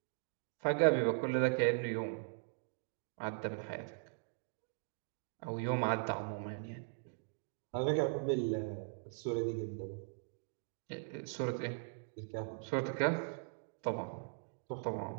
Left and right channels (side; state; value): left; silent; digital silence